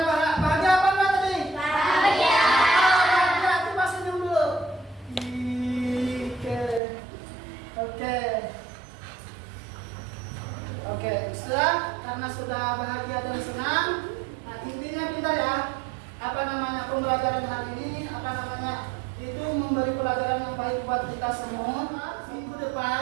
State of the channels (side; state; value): left; drops out; at 6.8 s